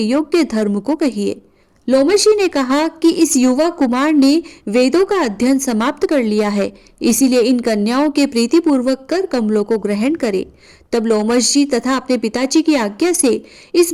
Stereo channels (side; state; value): both; identical; correlation 1.00